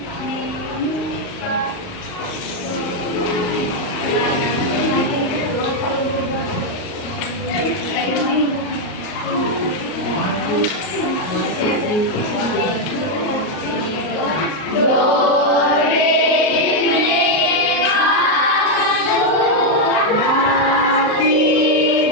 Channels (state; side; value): late; right; 38 ms